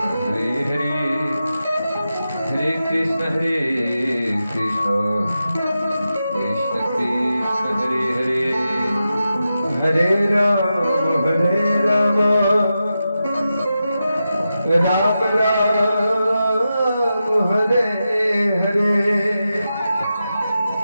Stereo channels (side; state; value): both; inverted; correlation -0.90